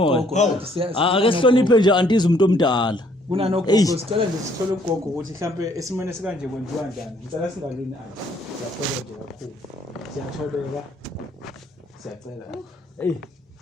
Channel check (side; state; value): both; normal; correlation 0.65